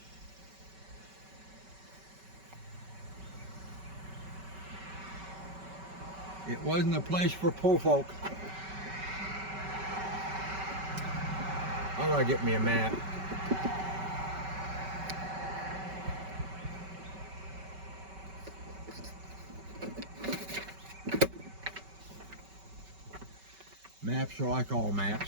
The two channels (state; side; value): late; left; 5.2 ms